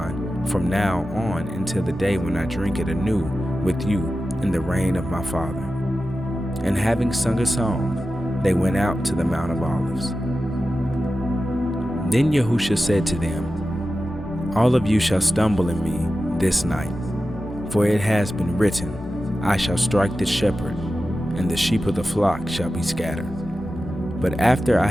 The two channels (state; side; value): normal; both; correlation 0.93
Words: from now on until the day when I drink it anew with you in the reign of my Father." And having sung a song, they went out to the Mount of Olives. Then YaHUsHa said to them, "All of you shall stumble in me this night, for it has been written, I shall strike the shepherd, and the sheep of the flock shall be scattered. But after I